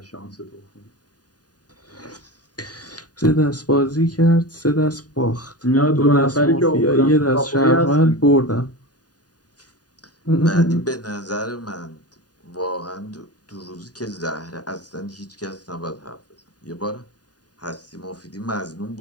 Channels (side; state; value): right; late; 0.68 ms